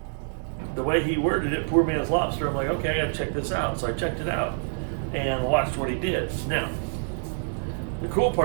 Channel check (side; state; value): left; silent; digital silence